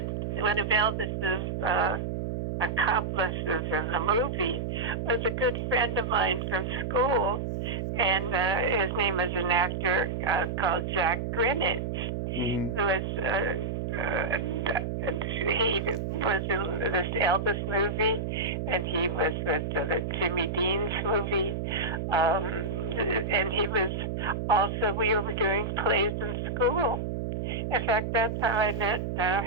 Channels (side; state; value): right; noise; hum, 3 dB below the sound